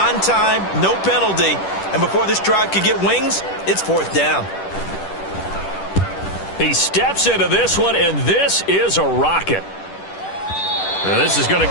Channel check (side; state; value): right; late; 10 ms